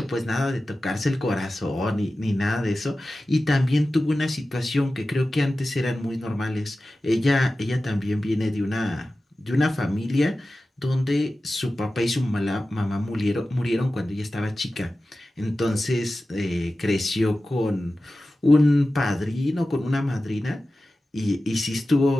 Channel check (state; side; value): normal; both; correlation 0.95